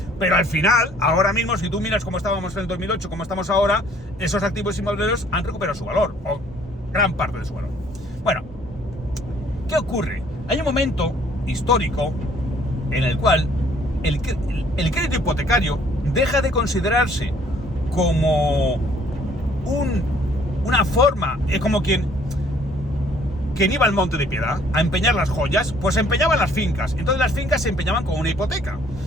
Pero al final, ahora mismo, si tú miras cómo estábamos en el 2008, cómo estamos ahora, esos activos inmobiliarios han recuperado su valor, o gran parte de su valor. Bueno, ¿qué ocurre? Hay un momento histórico en el cual el crédito hipotecario deja de considerarse como una forma, como quien iba al Monte de Piedad a empeñar las joyas, pues empeñaban las fincas. Entonces las fincas se empeñaban con una hipoteca.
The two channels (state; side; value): normal; both; correlation 0.60